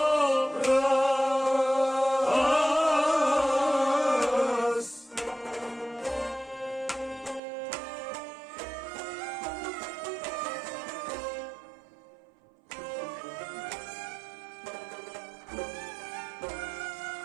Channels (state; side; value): drops out; left; at 7.4 s